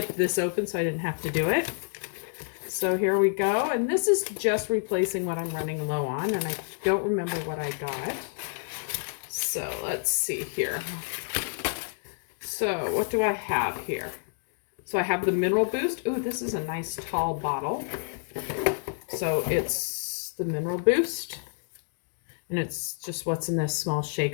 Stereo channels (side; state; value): right; silent; digital silence